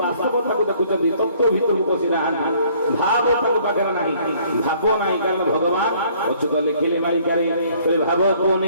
ବାସ୍ତବତାକୁ ଦେଖୁଛନ୍ତି, ତତ୍ତ୍ୱ ଭିତରକୁ ପଶି ନାହାନ୍ତି, ଭାବ ତାଙ୍କ ପାଖରେ ନାହିଁ, ଭାବ ନାହିଁ। କାରଣ ଭଗବାନ ଅଚ୍ୟୁତ ଲେଖିଲେ ମାଳିକାରେ ଭାବକୁ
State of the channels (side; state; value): both; inverted; correlation -0.60